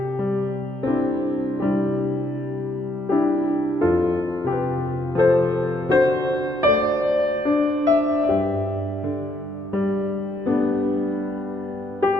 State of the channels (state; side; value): normal; both; correlation 0.72